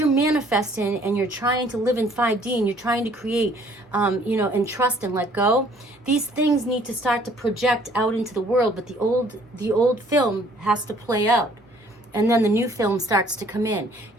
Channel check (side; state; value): both; normal; correlation 0.59